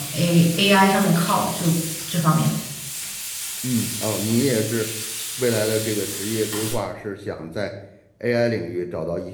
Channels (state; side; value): identical; both; correlation 1.00